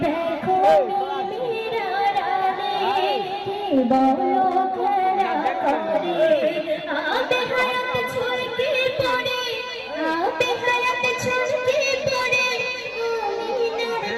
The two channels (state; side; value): identical; both; correlation 1.00